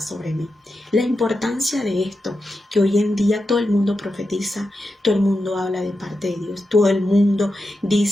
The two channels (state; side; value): normal; both; correlation 0.89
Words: mí. La importancia de esto, que hoy en día todo el mundo profetiza, todo el mundo habla de parte de Dios, todo el mundo